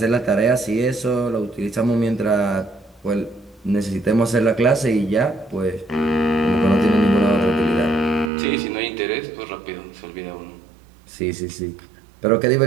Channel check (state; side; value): drops out; left; at 8.3 s